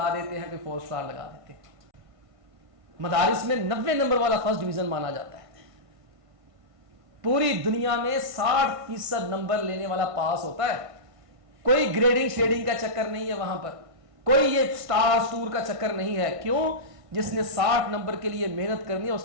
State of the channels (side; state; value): left; late; 1.5 ms